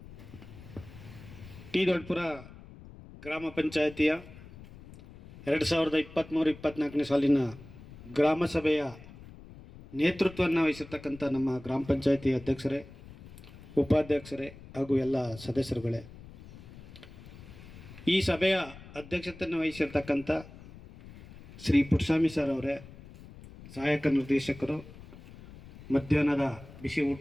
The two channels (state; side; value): noise; left; rumble, 18 dB below the sound